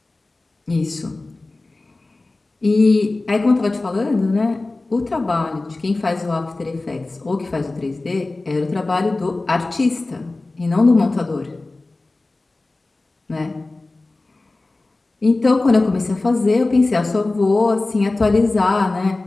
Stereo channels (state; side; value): quieter; right; 3.2 dB